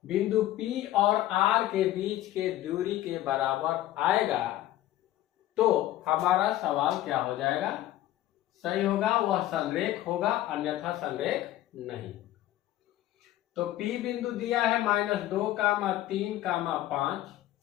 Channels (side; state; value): right; quieter; 14.3 dB